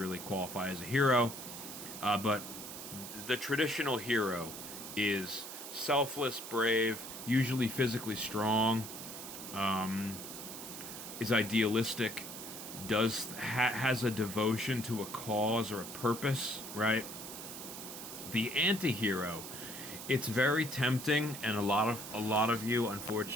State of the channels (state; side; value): noise; right; hiss, 10 dB below the sound